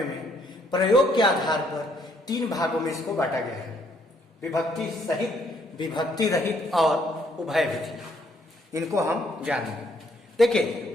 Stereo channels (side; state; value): both; normal; correlation 0.68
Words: में प्रयोग के आधार पर 3 भागों में इसको बांटा गया है, विभक्ति सहित, विभक्ति रहित और उभय विधि। इनको हम जानेंगे।